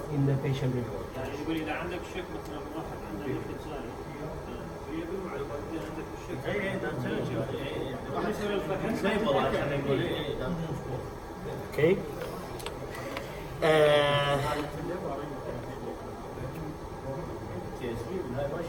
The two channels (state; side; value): identical; both; correlation 1.00